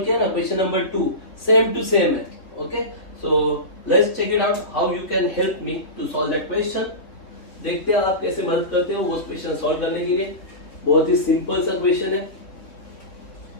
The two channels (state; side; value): late; right; 3.8 ms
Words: किया ना question number 2, same to same है. Okay. So let's check it out how you can help me to solve that question. देखते हैं आप कैसे मदद करते हो वो क्वेश्चन सॉल्व करने के लिए. बहुत ही सिंपल सा क्वेश्चन है.